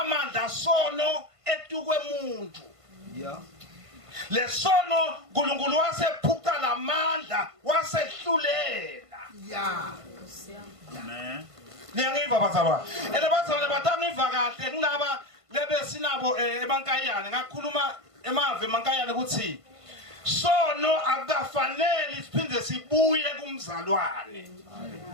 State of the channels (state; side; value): late; left; 1.5 ms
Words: sono etukwe umuntu lesono uNkulunkulu wasephuca lamandla wasehlulela amen niyangiva bazalwane elebazalwane batangiva kahle ngilaba lebesinabo emankayane ngakhuluma emave emankayane ukuthi sono akufanele siphinde sibuye kumzalwane